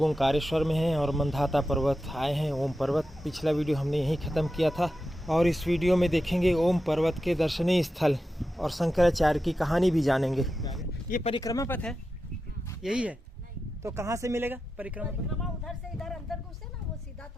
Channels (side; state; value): both; normal; correlation 0.90